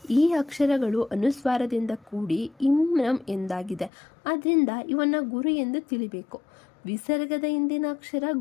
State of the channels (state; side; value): drops out; right; at 3.9 s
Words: ಈ ಅಕ್ಷರಗಳು ಅನುಸ್ವಾರದಿಂದ ಕೂಡಿ ಇಮ್ರಂ ಎಂದಾಗಿದೆ. ಆದ್ದರಿಂದ ಇವನ್ನ ಗುರು ಎಂದು ತಿಳಿಬೇಕು. ವಿಸರ್ಗದ ಹಿಂದಿನ ಅಕ್ಷರ